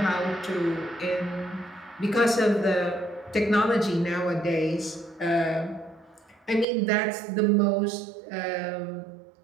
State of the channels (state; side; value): drops out; left; at 6.7 s